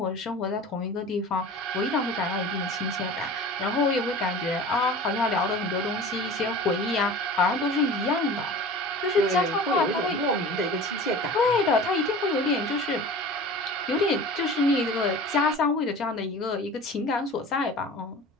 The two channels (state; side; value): normal; both; correlation 0.38